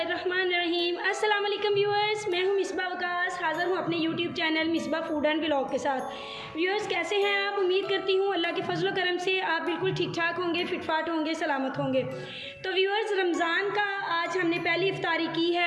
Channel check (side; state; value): both; identical; correlation 1.00